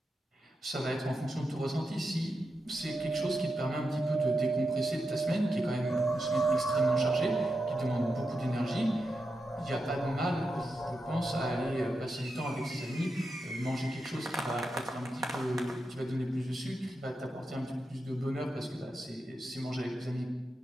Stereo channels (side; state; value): both; normal; correlation 0.88